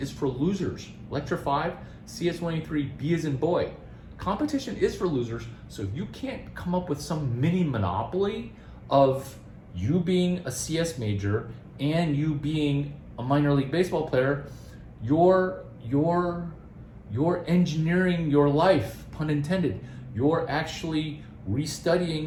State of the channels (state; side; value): identical; both; correlation 1.00